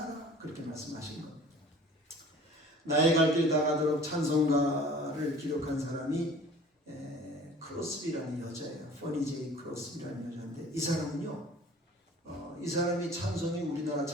그렇게 말씀하신 겁니다. 나의 갈 길 다 가도록 찬송가를 기록한 사람이 크로스비라는 여자예요. 퍼니 제이 크로스비라는 여자인데 이 사람은요. 이 사람이 찬송이 우리나라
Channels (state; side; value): normal; both; correlation 0.47